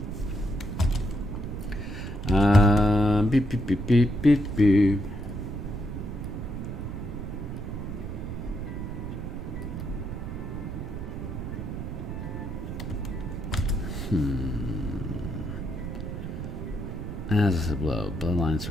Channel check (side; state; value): right; noise; rumble, 6 dB below the sound